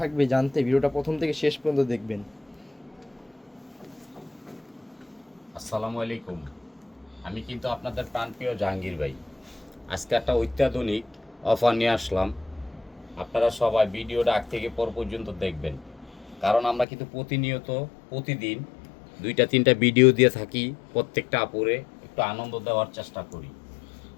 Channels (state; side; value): drops out; right; at 16.9 s